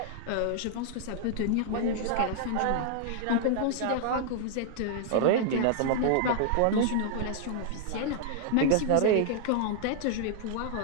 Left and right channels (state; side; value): different; both; correlation -0.01